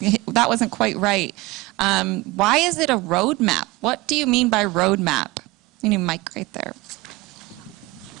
that wasn't quite right. Why is it a roadmap? What do you mean by roadmap? You need a mic right there.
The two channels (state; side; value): quieter; left; 21.6 dB